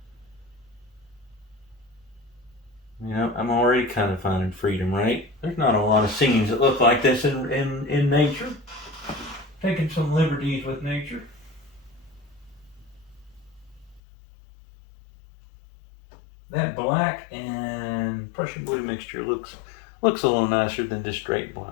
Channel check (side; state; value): right; drops out; at 14.0 s